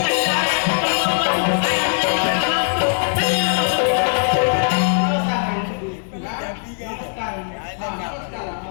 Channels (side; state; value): right; silent; digital silence